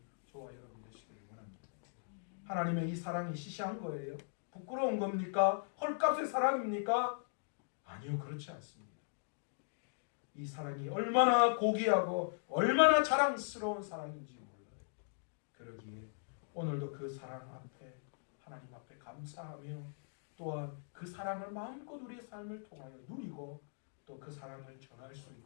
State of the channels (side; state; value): right; silent; digital silence